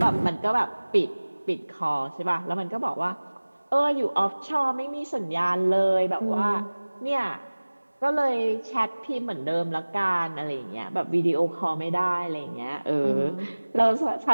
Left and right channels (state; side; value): inverted; both; correlation -1.00